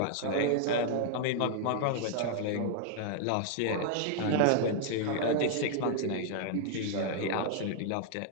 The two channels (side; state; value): both; different; correlation -0.01